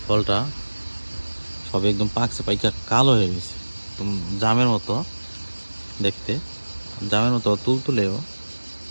ফলটা সবে একদম পাকছে, পাইকা কালো হয়ে গেছে, একদম জামের মতো দেখতে, জামের মতো তুলতুলেও।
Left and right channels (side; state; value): both; inverted; correlation -1.00